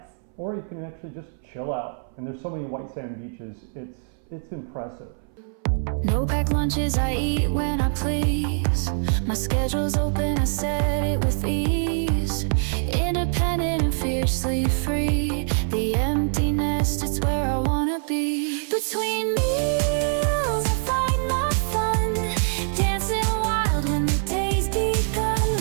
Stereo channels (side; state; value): left; silent; 61 dB below the other